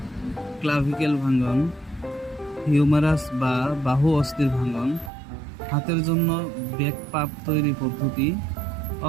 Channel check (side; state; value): left; drops out; at 5.1 s